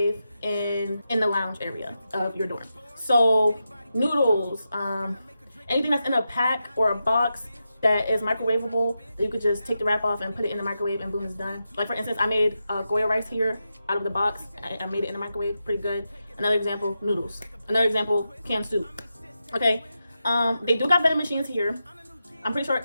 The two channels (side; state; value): both; inverted; correlation -0.89